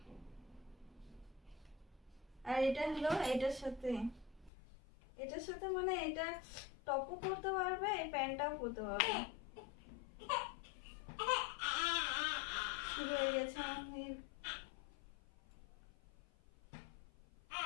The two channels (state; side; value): drops out; right; at 4.5 s